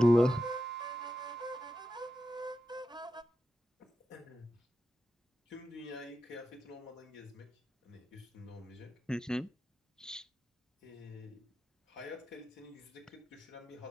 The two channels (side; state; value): both; normal; correlation 0.89